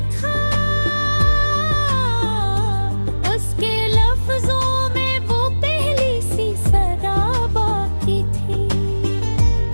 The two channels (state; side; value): inverted; both; correlation -1.00